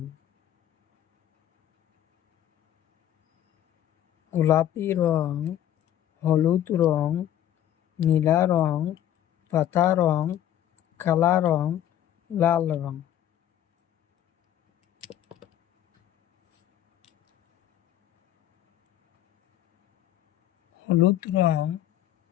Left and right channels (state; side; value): quieter; right; 11.7 dB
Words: গোলাপি রং, হলুদ রং, নীলা রং, পাতা রং, কালা রং, লাল রং। হলুদ রং